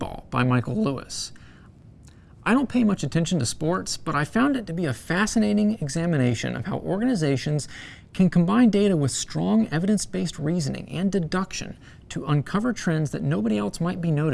by Michael Lewis. I don't pay much attention to sports, but I found it to be a fascinating examination of how organizations can combine data with strong evidence-based reasoning and deduction to uncover trends that nobody else might be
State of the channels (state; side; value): identical; both; correlation 1.00